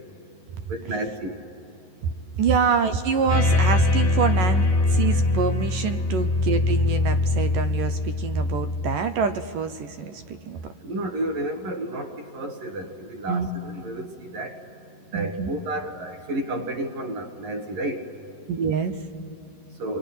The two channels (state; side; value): late; left; 11 ms